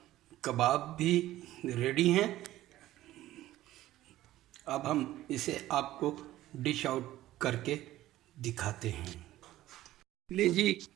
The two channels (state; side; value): quieter; left; 15.0 dB